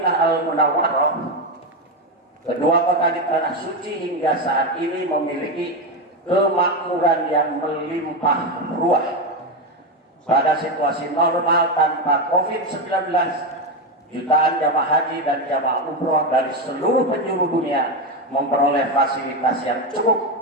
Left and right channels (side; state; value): both; normal; correlation 0.12